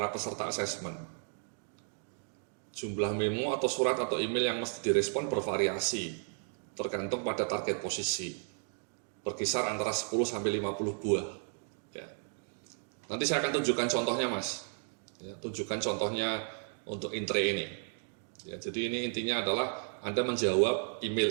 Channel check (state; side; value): silent; left; 55 dB below the other